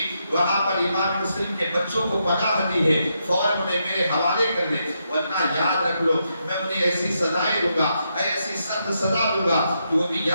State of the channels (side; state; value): both; inverted; correlation -0.81